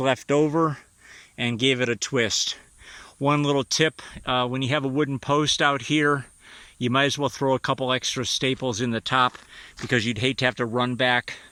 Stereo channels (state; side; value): identical; both; correlation 1.00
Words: left over and gave it a twist. One little tip, when you have a wooden post out here, you might as well throw a couple extra staples in the top, because you'd hate to have to run back